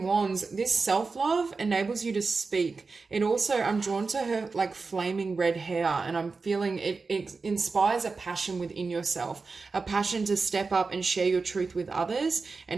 this self-love enables you to speak. It also, I'm drawn to her like flaming red hair, and I'm feeling it inspires a passion within yourself, a passion to step up and share your truth with others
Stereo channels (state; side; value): quieter; left; 4.3 dB